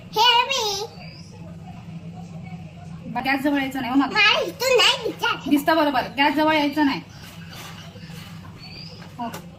हे मी गॅस जवळ यायचं नाही हो मग. मला इथून नाही विचार. दिसतं बरोबर, गॅस जवळ यायचं नाही. हो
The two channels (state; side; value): identical; both; correlation 1.00